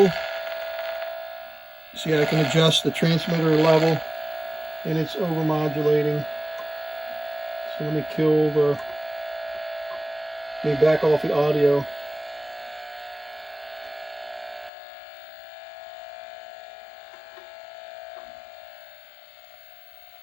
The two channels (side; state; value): right; drops out; at 14.7 s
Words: See, I can adjust the transmitter level and it's overmodulating. So let me back off the audio.